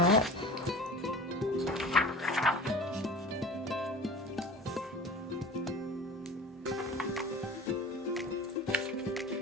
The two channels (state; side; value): normal; both; correlation 0.38